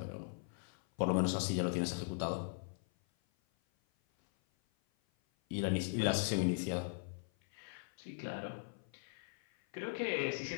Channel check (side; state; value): right; silent; 51 dB below the other